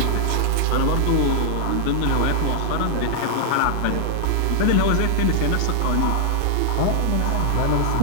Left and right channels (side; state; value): both; different; correlation -0.01